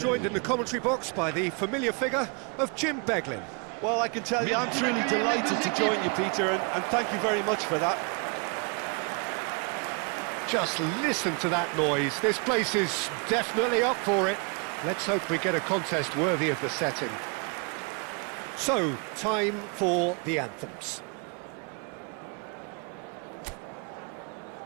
in the commentary box by the familiar figure of Jim Beglin. Well, I can tell you, I'm truly delighted to join you, Peter, and thank you very much for that. Just listen to that noise. This place is definitely up for it. Let's hope we get a contest worthy of the setting. So, time for the anthems.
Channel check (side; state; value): left; quieter; 34.2 dB